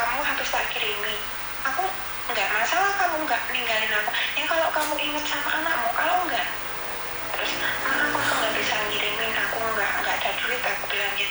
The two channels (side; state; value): right; noise; rumble, 23 dB below the sound